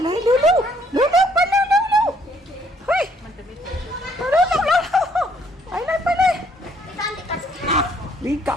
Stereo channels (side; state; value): both; normal; correlation 0.66